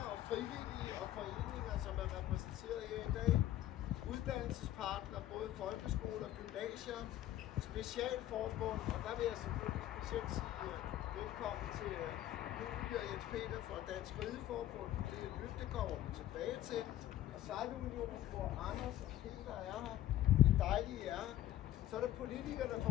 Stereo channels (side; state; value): right; quieter; 13.3 dB